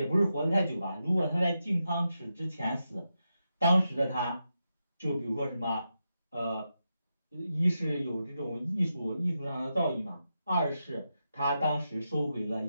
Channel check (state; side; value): inverted; both; correlation -0.87